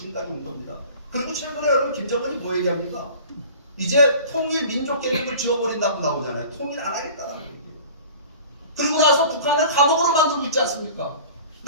온 겁니다. 그리고 최근에 여러분 김정은이 뭐 얘기합니까? 이제 통일 민족 계획을 지워버린다고 나오잖아요. 통일 안 하겠다라는 얘기예요. 그리고 나서 북한을 감옥으로 만들고 있지 않습니까?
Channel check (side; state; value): both; inverted; correlation -0.42